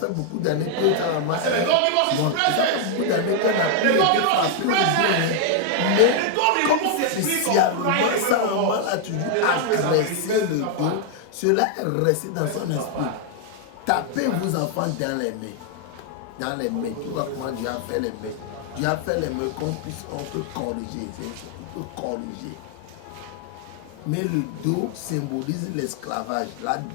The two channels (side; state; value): both; different; correlation 0.00